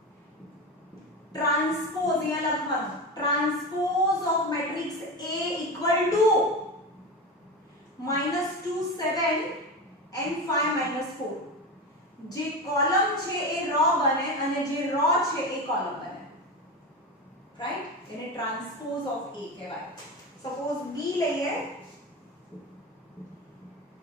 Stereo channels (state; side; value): normal; both; correlation 0.22